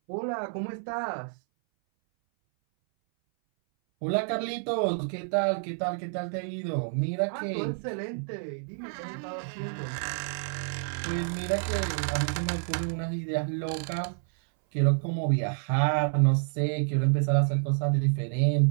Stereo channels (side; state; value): left; silent; 58 dB below the other